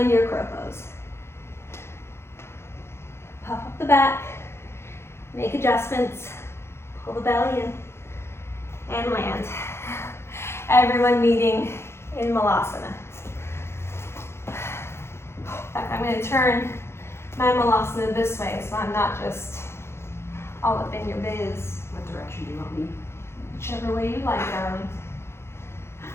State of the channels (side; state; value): right; late; 0.12 ms